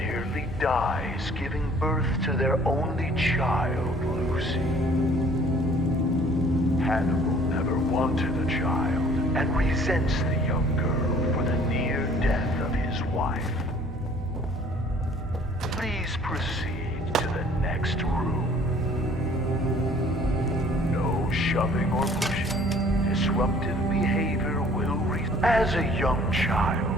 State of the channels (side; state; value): both; normal; correlation 0.55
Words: dies giving birth to their only child, Lucy. Hannibal never wanted a child and resents the young girl for the near death of his wife. Please proceed to the next room. No shoving or pushing. Disruptive behavior will As a young